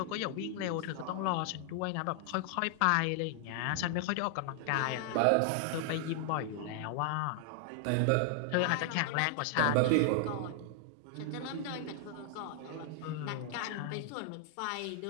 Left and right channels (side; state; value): both; different; correlation 0.00